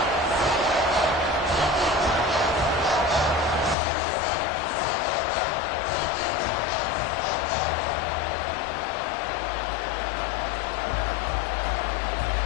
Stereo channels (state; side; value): drops out; right; at 3.8 s